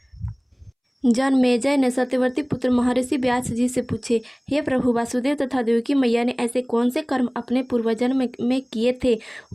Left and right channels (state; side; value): identical; both; correlation 1.00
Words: जनमेजय ने सत्यवती पुत्र महर्षि व्यास जी से पूछे, हे प्रभु, वासुदेव तथा देवकी मैया ने ऐसे कौन से कर्म अपने पूर्वजन्म में किए थे,